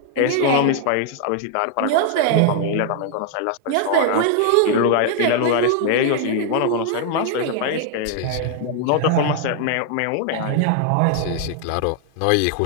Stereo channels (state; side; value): different; both; correlation 0.00